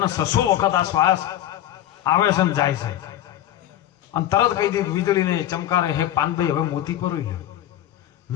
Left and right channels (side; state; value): right; quieter; 12.4 dB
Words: વખત આ શ્વાસ આવે છે ને જાય છે। અને તરત કહી દીધું વીજળીને ચમકારે, હે પાનભાઈ હવે મોતી પરોઈ લ્યો,